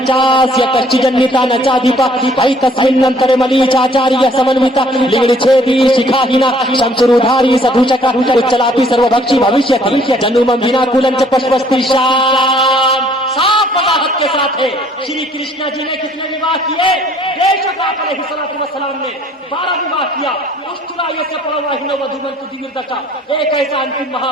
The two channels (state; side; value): normal; both; correlation 0.60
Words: کشچجنیتا نچادھیپا ایتسمننترے ملیچاچاریہ سمنوتا لنگڑ چھیدی شکھاہینا شمشرودھاری سدھوچکا اچلاپی سروبھکشی بھوشیتی جنومم ویناکولم چ پشپستی شام. صاف وضاحت کے ساتھ ہے. شری کرشنا جی نے کتنے وواہ کیے؟ بے شک آپ علیہ الصلوۃ والسلام نے 12 وواہ کیا. اشترايस्य پرواہنو ودومنتو دیوردشا ایک ایسا انتم